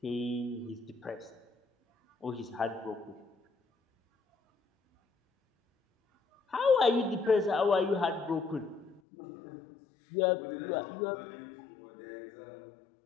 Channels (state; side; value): drops out; right; at 9.0 s